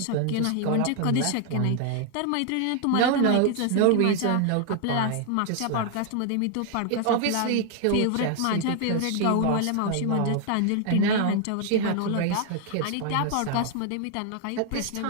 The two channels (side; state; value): both; different; correlation 0.00